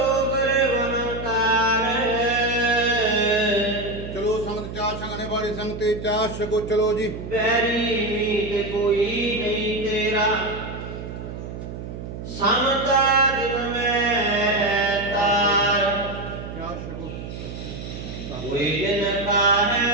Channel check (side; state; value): right; noise; hum, 9 dB below the sound